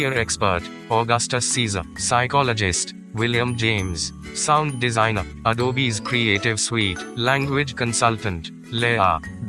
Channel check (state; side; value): identical; both; correlation 1.00